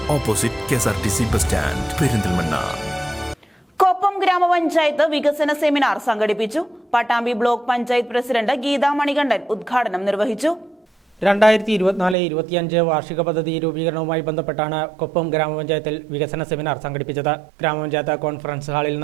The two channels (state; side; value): drops out; left; at 12.2 s